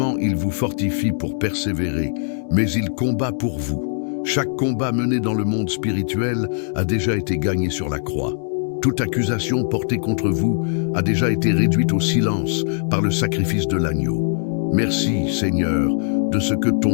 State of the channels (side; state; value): right; silent; digital silence